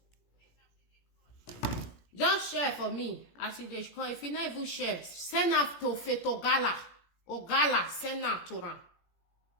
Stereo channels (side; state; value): right; late; 17 ms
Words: Just share for me. As they call, if you not even share, send out to Fetogala. Ogala, send out to them.